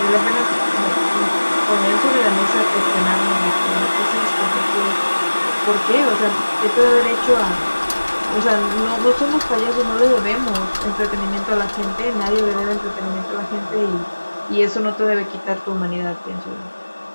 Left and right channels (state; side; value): inverted; both; correlation -1.00